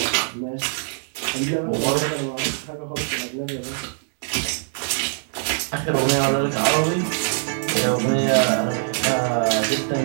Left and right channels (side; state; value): left; silent; digital silence